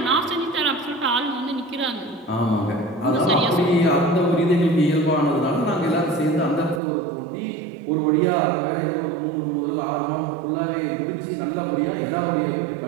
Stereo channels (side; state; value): left; drops out; at 6.8 s